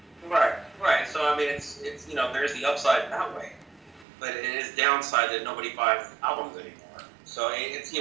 Right. So, it's there's the upside that way. But it is downside that nobody buys albums anymore. So, who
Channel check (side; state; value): left; drops out; at 4.0 s